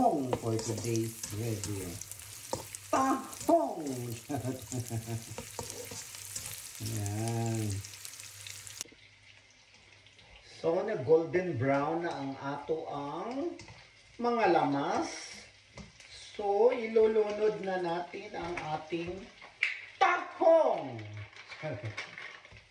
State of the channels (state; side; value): identical; both; correlation 1.00